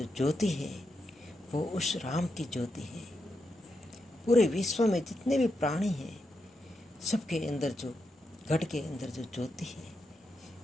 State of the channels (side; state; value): both; normal; correlation 0.85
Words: ज्योति है वो उस राम की ज्योति है। पूरे विश्व में जितने भी प्राणी हैं, सबके अंदर जो, घट के अंदर जो ज्योति है